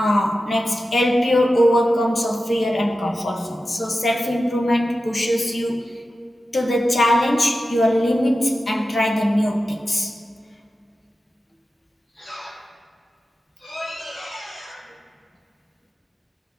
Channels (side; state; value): both; normal; correlation 0.92